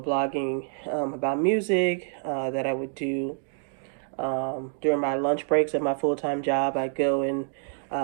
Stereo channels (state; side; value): silent; left; digital silence